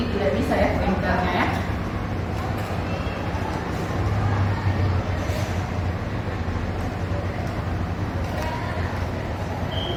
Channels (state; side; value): identical; both; correlation 1.00